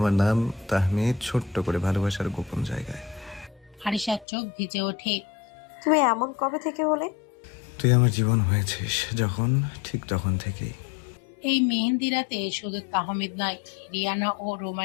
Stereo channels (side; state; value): right; drops out; at 4.2 s